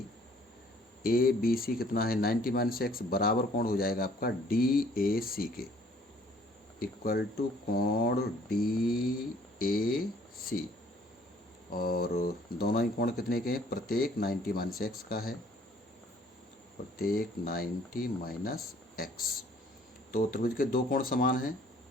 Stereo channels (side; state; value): both; normal; correlation 0.59